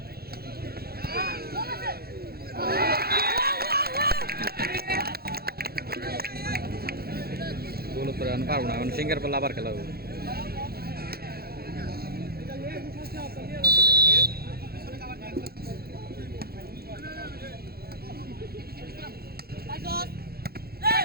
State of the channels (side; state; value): left; late; 0.45 ms